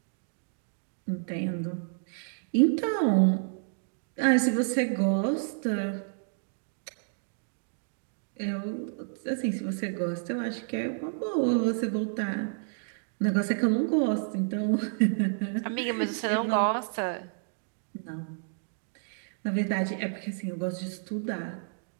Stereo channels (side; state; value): left; silent; digital silence